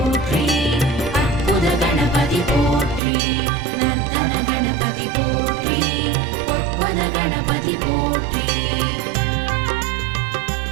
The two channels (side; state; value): left; drops out; at 3.0 s